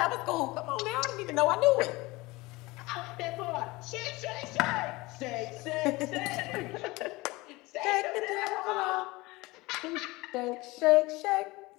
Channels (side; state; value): right; quieter; 21.8 dB